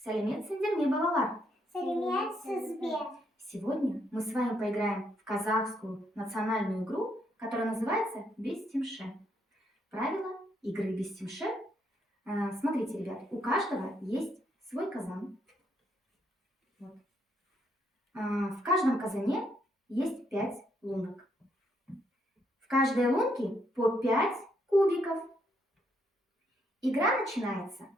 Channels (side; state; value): both; normal; correlation 0.74